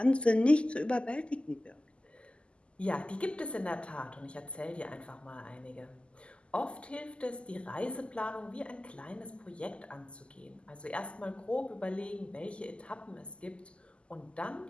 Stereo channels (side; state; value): right; late; 0.053 ms